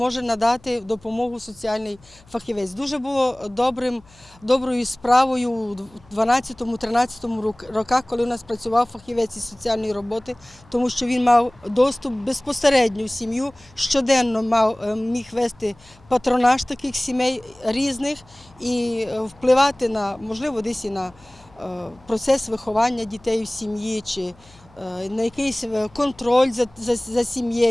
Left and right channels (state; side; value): noise; left; hum, 27 dB below the sound